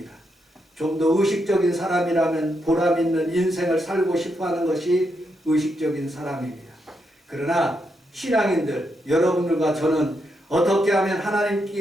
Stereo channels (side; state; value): both; normal; correlation 0.81